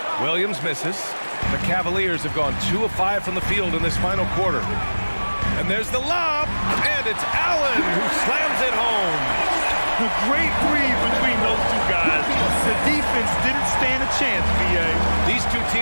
Williams misses. The Cavaliers have gone 2 of 5 from the field in this final quarter. And there's the lob. And it's Allen who slams it home. A great read between those 2 guys. The defense didn't stand a chance, B.A. These 2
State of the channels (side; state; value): both; inverted; correlation -1.00